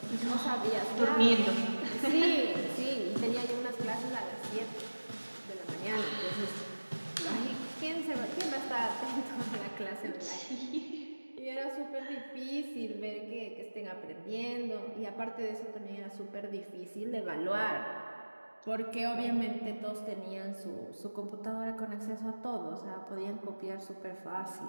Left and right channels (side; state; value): both; inverted; correlation -1.00